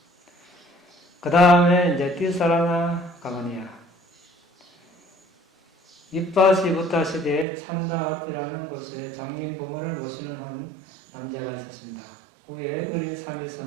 그 다음에 이제 띠사라나 가마니아. 이빠시 부타 시대에 찬다와티라는 곳에 장님 부모를 모시는 한 남자가 있었습니다. 후에 어린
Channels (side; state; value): left; drops out; at 7.5 s